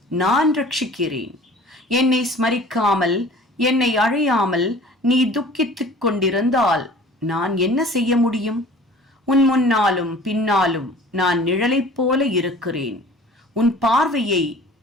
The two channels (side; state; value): both; normal; correlation 0.46